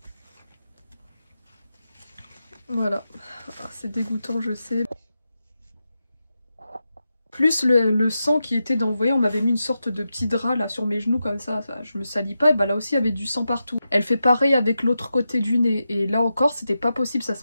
Voilà. Ah, c'est dégoûtant, je sais. Plus le sang qui était dans, vous voyez, on m'avait mis une sorte de petit drap là sur mes genoux comme ça je me salis pas, et bah là aussi il y avait du sang partout. Elle fait pareil avec l'autre côté du nez, et là encore c'était pas possible, ça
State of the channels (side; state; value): both; inverted; correlation -0.89